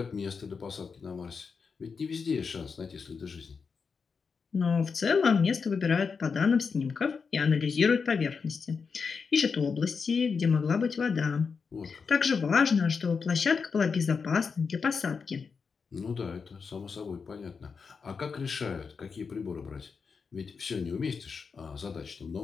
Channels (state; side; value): quieter; right; 5.4 dB